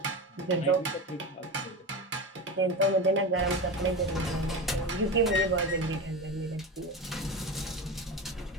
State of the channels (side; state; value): both; normal; correlation 0.24